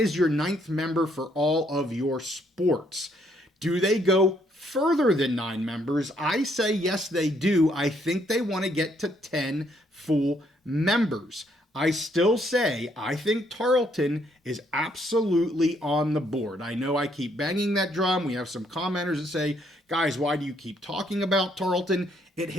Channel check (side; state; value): both; normal; correlation 0.70